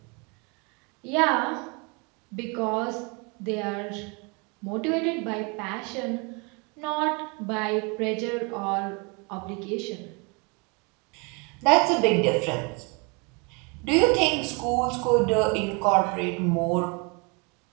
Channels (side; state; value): left; quieter; 31.2 dB